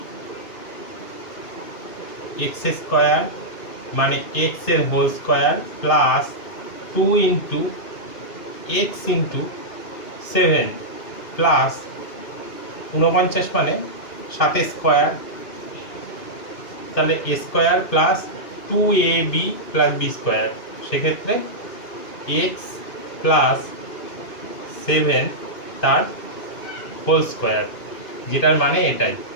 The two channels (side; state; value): right; late; 2.5 ms